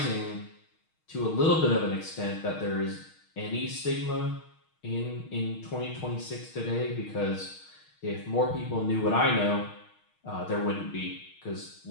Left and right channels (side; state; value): right; late; 6.4 ms